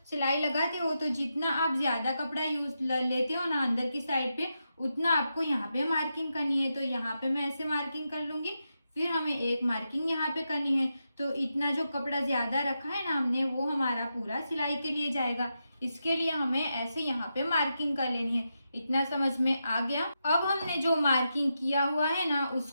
सिलाई लगाते हो, तो जितना आप ज्यादा कपड़ा यूज लेते हो ना अंदर की साइड पे, उतना आपको यहाँ पे मार्किंग करनी है। तो यहाँ पे मैं ऐसे मार्किंग कर लूंगी। फिर हमें एक मार्किंग यहाँ पे करनी है। तो इतना जो कपड़ा ज्यादा रखा है ना हमने, वो हमारा पूरा सिलाई के लिए जाएगा। इसके लिए हमें ऐसे यहाँ पे मार्किंग कर लेनी है। इतना समझ में आ गया। अब हमने जो मार्किंग किया हुआ है ना,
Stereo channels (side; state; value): both; inverted; correlation -0.86